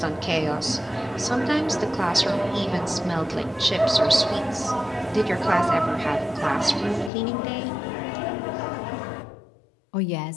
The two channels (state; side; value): drops out; right; at 7.1 s